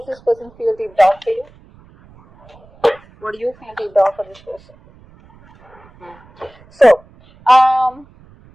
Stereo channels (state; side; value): noise; right; rumble, 27 dB below the sound